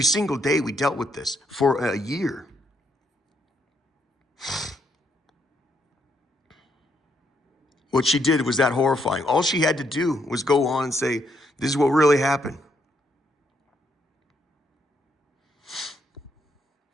single day we dealt with this for a year. What she did was that horrifying. All she had to do was go on and say, this is what really happened.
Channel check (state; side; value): normal; both; correlation 0.75